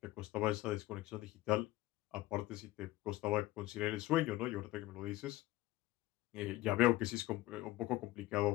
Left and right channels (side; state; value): right; quieter; 16.9 dB